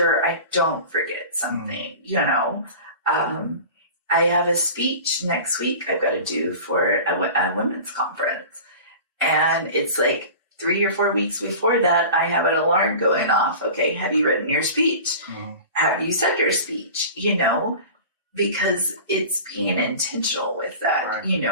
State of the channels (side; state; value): both; inverted; correlation -0.37